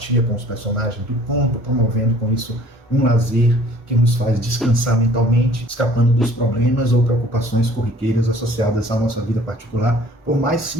com os personagens do conto, promovendo com isso um lazer que nos faz descansar mentalmente, escapando dos problemas ou preocupações corriqueiras associadas à nossa vida particular, por mais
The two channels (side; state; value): both; normal; correlation 0.53